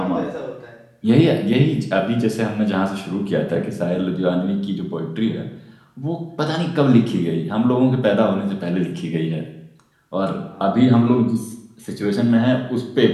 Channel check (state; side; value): identical; both; correlation 1.00